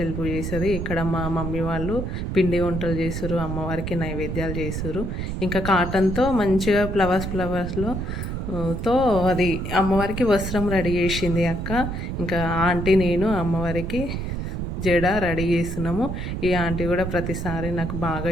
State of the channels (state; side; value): noise; right; rumble, 4 dB below the sound